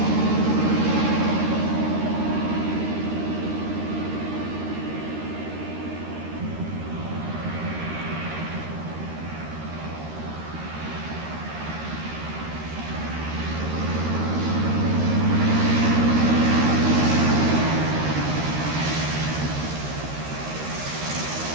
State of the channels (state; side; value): late; left; 13 ms